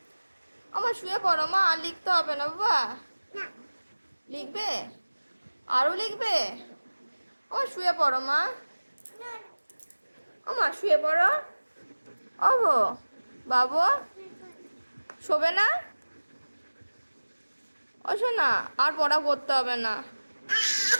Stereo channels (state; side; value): inverted; both; correlation -1.00